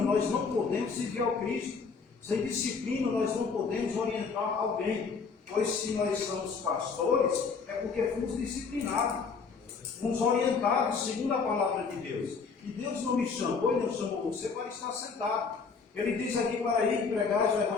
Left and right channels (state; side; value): quieter; right; 5.1 dB